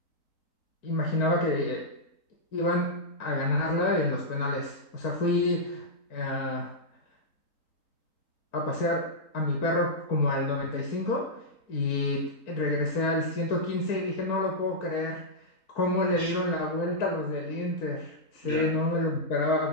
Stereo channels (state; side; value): late; right; 3.8 ms